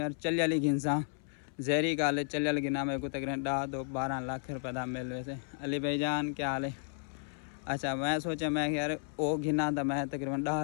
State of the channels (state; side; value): silent; right; 56 dB below the other